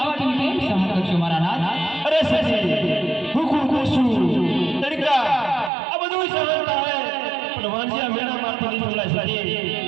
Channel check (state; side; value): drops out; left; at 5.7 s